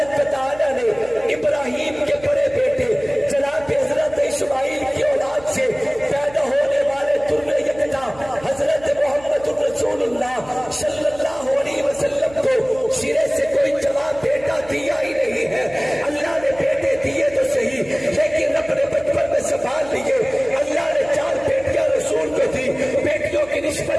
و تعالی نے ابراہیم کے بڑے بیٹے جناب حضرت اسماعیل کی اولاد سے پیدا ہونے والے در یکتا حضرت محمد رسول اللہ صلی اللہ علیہ وسلم کو سرے سے کوئی جواب بیٹا دیا ہی نہیں ہے. اللہ نے بیٹے دیے تو صحیح، لیکن اپنے بچپن میں سنبھال لیے. اللہ نے 4 بیٹیاں رسول کو دی. بیٹیوں کی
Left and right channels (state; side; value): noise; right; hum, 20 dB below the sound